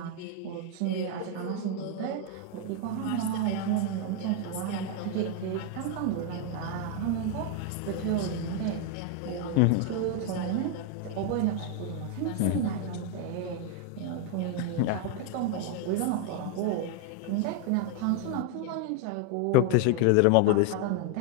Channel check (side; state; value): both; different; correlation 0.01